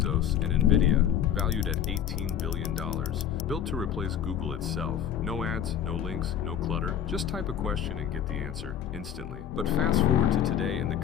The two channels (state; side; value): quieter; right; 9.5 dB